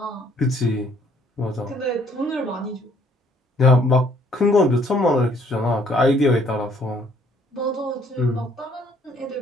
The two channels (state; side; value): normal; both; correlation 0.63